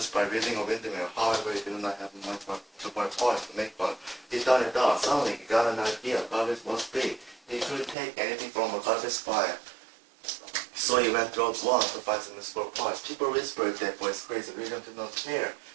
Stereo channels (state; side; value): drops out; left; at 8.0 s